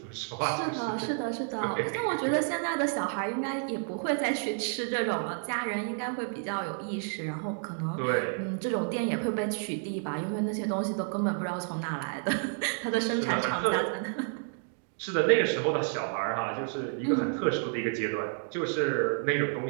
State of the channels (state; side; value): silent; left; 58 dB below the other